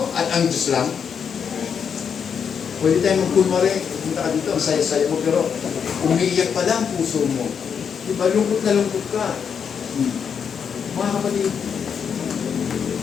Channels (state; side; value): quieter; right; 7.0 dB